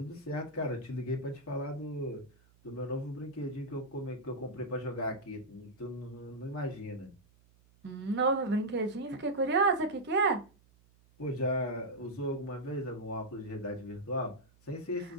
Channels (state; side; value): noise; right; hum, 29 dB below the sound